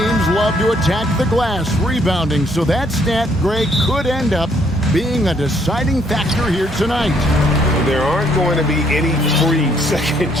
love to attack the glass, rebounding. So that stat, Greg, could end up being a deciding factor here tonight. There aren't going to be any free second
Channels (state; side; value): normal; both; correlation 0.67